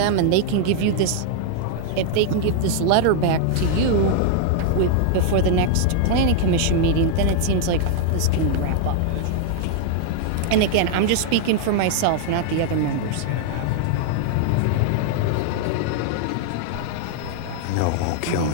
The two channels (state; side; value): different; both; correlation -0.01